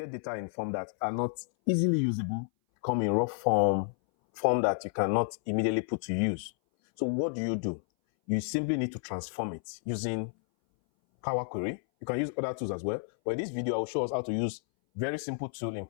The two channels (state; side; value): silent; right; 57 dB below the other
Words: data in form that are not easily usable, come in raw form that you cannot immediately put to use. So what do? You simply need to transform it using Power Query. You can use other tools as well. But in this video, I will show us how to use very simple tool in